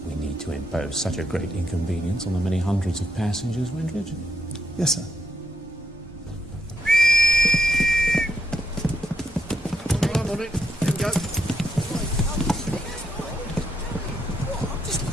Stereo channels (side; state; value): both; normal; correlation 0.78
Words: we need to impose such a great inconvenience on the many hundreds of passengers, Windridge. Yes, sir.